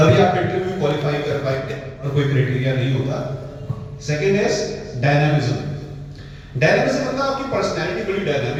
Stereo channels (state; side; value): identical; both; correlation 1.00